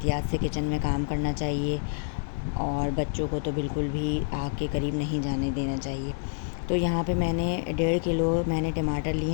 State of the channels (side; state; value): right; silent; digital silence